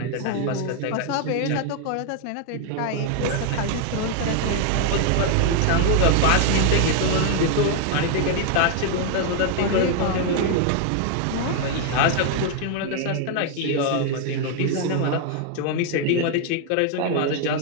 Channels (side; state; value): both; different; correlation 0.00